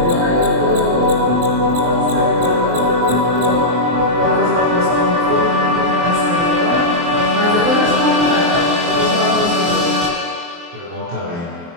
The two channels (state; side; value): late; left; 23 ms